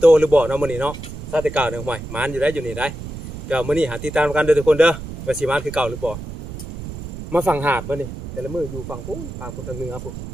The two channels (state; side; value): noise; right; rumble, 10 dB below the sound